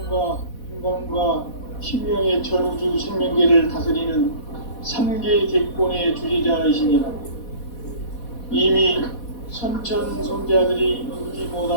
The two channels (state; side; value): late; right; 4.1 ms